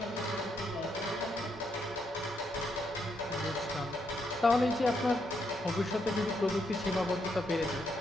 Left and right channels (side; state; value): both; normal; correlation 0.78